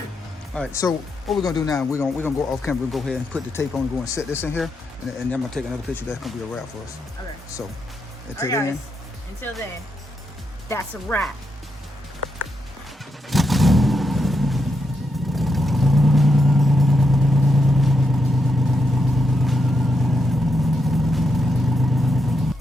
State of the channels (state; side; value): normal; both; correlation 0.83